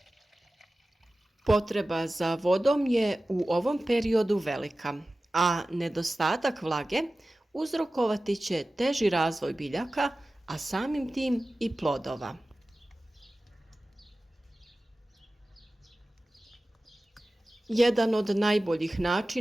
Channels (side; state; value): both; normal; correlation 0.96